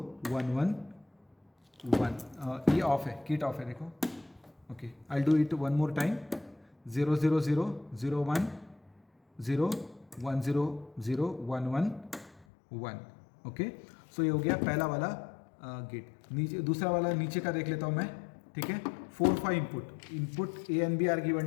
1 1 1, ये ऑफ है, किट ऑफ है देखो। Okay I do it one more time 0 0 0 0 1 0 1 0 0 1 1 1, okay. So ये हो गया पहला वाला गेट। नीचे दूसरा वाला नीचे का देख लेता हूँ मैं, ठीक है। 4 5 input A and B are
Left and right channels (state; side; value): drops out; right; at 12.5 s